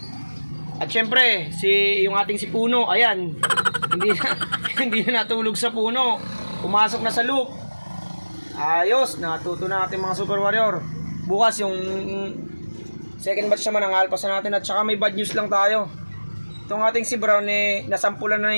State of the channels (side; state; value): both; inverted; correlation -1.00